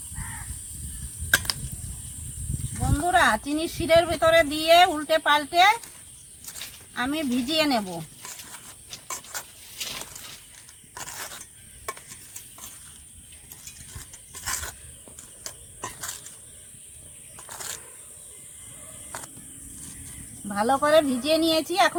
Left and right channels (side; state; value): both; identical; correlation 1.00